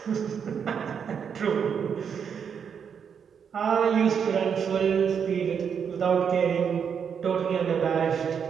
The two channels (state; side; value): quieter; left; 7.2 dB